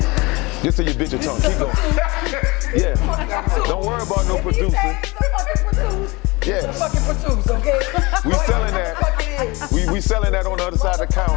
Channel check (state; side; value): quieter; right; 24.3 dB